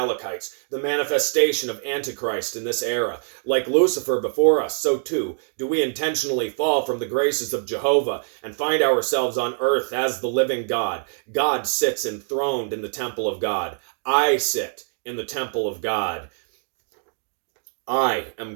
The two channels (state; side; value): silent; left; digital silence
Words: the manifestation of Antichrist in this era. Like Lucifer before us, so too do we intentionally fall from the graces of Jehovah and find ourselves on earth as the living God. God sits enthroned in the temple of God. I sit in the temple of God. I am